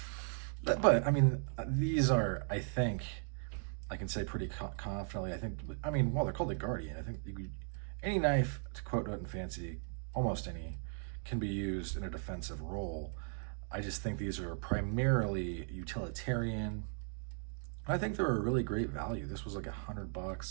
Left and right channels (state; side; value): silent; left; 53 dB below the other